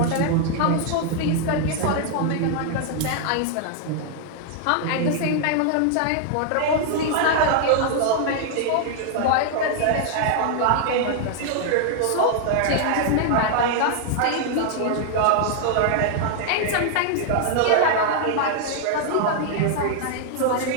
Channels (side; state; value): both; different; correlation -0.01